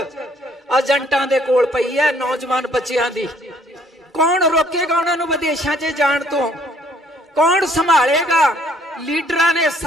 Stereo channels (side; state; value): both; normal; correlation 0.63